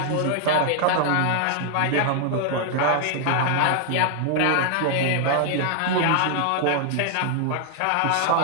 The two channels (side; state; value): both; different; correlation 0.00